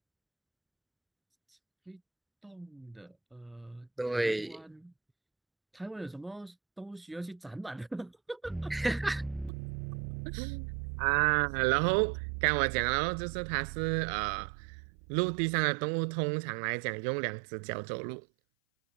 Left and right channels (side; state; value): left; drops out; at 9.5 s